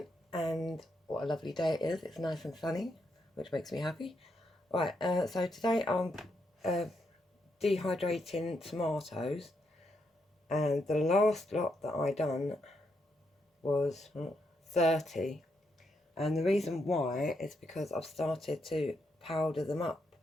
and what a lovely day it is. It's nice and sunny, which makes me happy. Right, so today I'm dehydrating tomatoes, and the last lot that I done was 30, and the reason why is because I've started to powder them up,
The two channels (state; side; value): normal; both; correlation 0.80